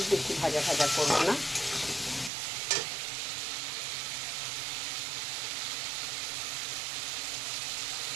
বেশি ভাজা ভাজা করবো না।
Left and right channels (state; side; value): drops out; left; at 2.3 s